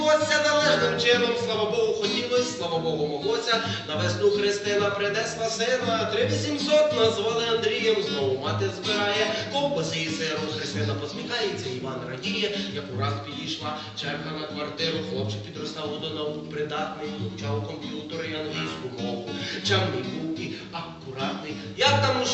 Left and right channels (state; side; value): identical; both; correlation 1.00